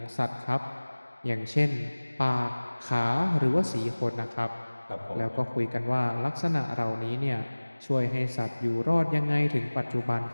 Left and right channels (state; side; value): inverted; both; correlation -1.00